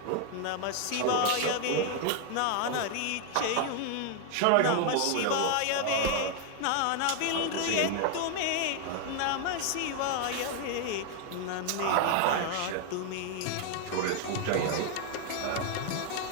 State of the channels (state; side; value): different; both; correlation 0.00